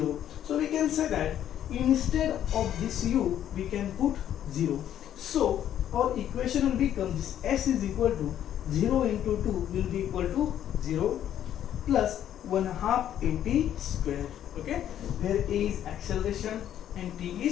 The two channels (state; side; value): quieter; right; 10.7 dB